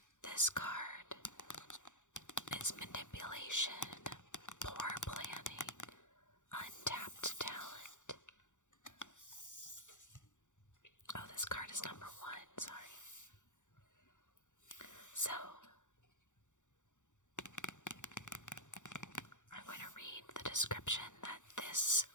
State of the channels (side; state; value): right; late; 0.85 ms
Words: this card is manipulation, poor planning, untapped talent. Oh, this card is number 1, sorry. So, I'm going to read the description that this